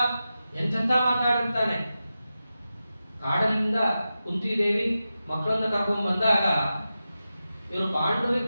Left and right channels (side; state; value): both; inverted; correlation -0.92